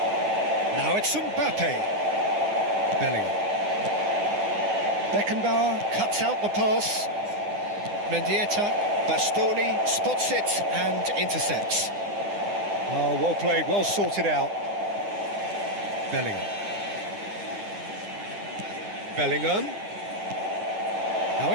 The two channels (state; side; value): late; left; 9.8 ms